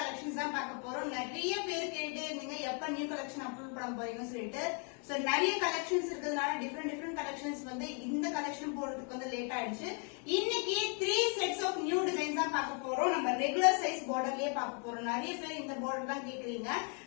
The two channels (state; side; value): quieter; right; 38.9 dB